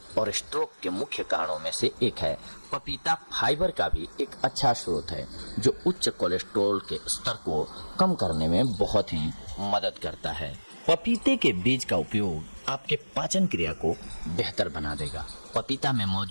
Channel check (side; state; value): both; inverted; correlation -1.00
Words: और स्ट्रोक के मुख्य कारणों में से एक है। पपीता फाइबर का भी एक अच्छा स्रोत है, जो उच्च कोलेस्ट्रॉल के स्तर को कम करने में बहुत ही मदद करता है। पपीते के बीज का उपयोग आपके पाचन क्रिया को बेहतर बना देगा। पपीता में